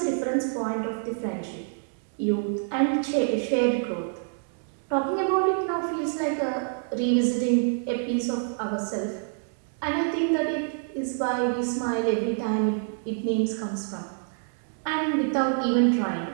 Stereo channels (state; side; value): silent; left; 60 dB below the other